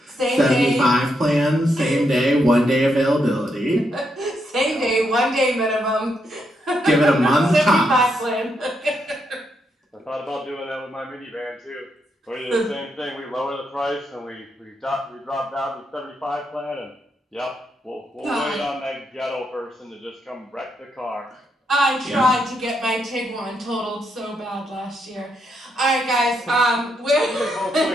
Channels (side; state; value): both; normal; correlation 0.80